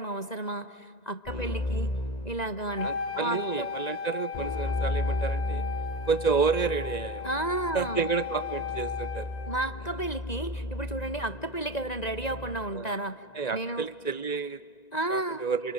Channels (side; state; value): right; late; 1.9 ms